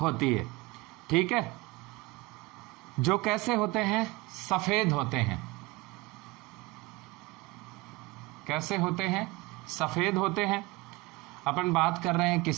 है, ठीक है। जो कैसे होते हैं? सफेद होते हैं, कैसे होते हैं? सफेद होते हैं। अपन बात कर रहे हैं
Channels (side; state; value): left; quieter; 21.4 dB